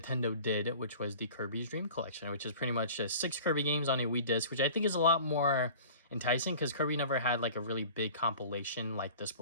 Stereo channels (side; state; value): both; inverted; correlation -0.42